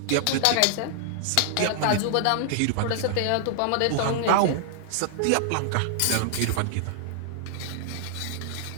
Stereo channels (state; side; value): different; both; correlation -0.01